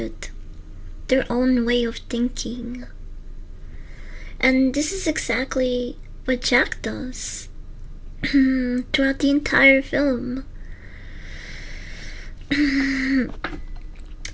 their own way of thinking. And this is exactly what Jack does throughout the entire film.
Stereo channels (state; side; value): identical; both; correlation 1.00